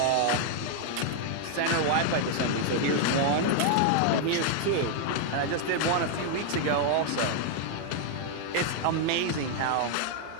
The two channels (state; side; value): different; both; correlation 0.00